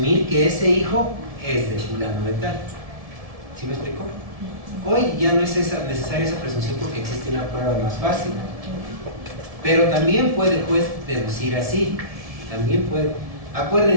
que ese hijo es de fulano de tal. ¿Sí me explico? Hoy ya no es necesaria esa presunción porque existe una prueba más fácil. Pero también puede el juez deducir así. También puede.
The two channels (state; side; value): late; left; 1.7 ms